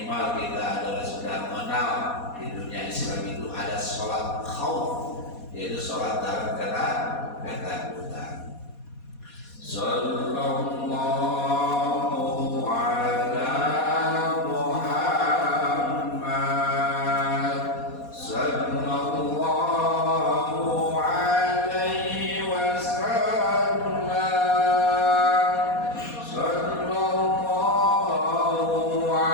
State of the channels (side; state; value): right; late; 4.2 ms